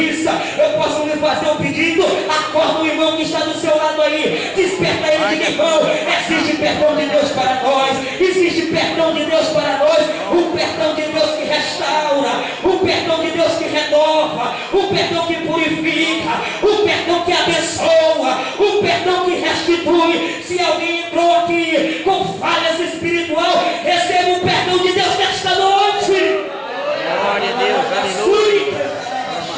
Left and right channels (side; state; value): both; identical; correlation 1.00